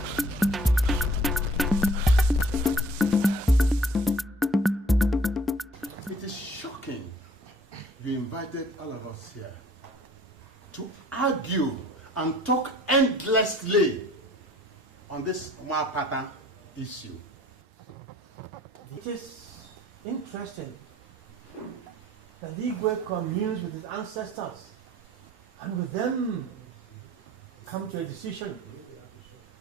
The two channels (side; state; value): both; normal; correlation 0.54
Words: It is shocking you invited all of us here to argue and talk endlessly on this Mwapata issue. It is interesting that Igwe communes with his ancestors and with them come to a decision